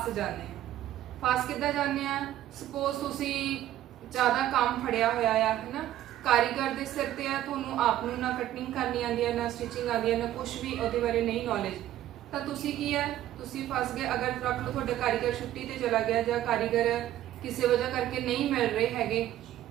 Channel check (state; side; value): quieter; left; 13.0 dB